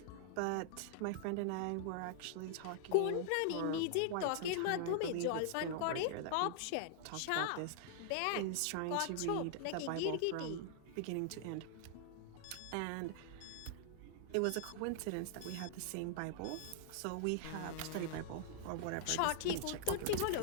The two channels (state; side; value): different; both; correlation -0.01